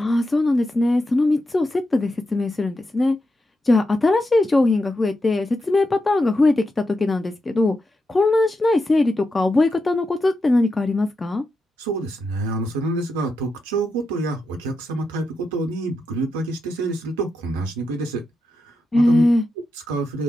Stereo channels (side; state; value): both; normal; correlation 0.87